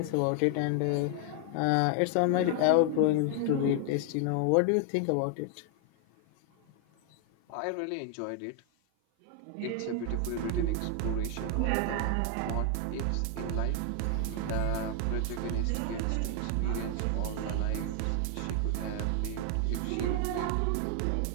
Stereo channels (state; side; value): different; both; correlation 0.00